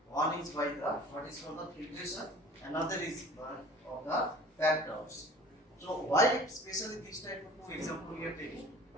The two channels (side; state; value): both; normal; correlation 0.45